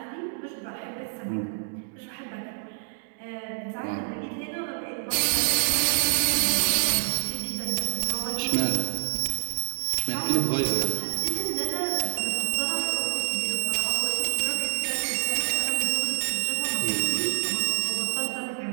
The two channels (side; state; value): left; silent; digital silence